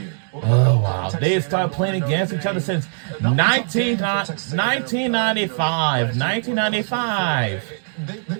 Oh, wow. They have started playing against each other since 1995. 1995. They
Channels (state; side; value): silent; left; digital silence